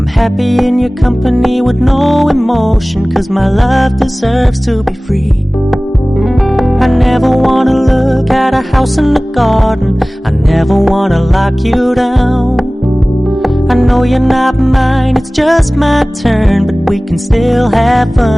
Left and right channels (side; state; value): both; normal; correlation 0.98